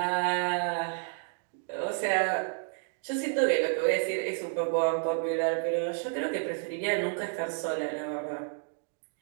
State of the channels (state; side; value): silent; left; 57 dB below the other